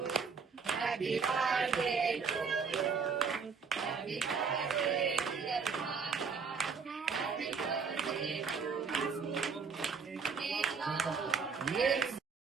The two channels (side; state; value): left; quieter; 5.6 dB